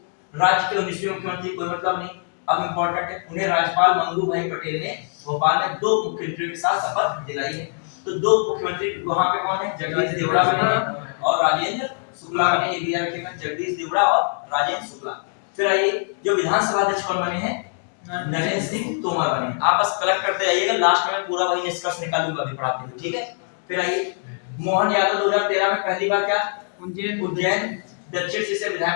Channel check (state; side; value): silent; right; 55 dB below the other